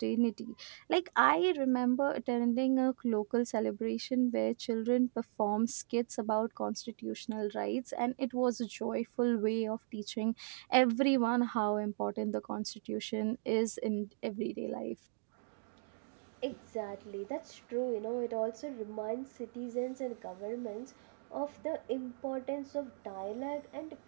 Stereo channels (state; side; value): silent; left; digital silence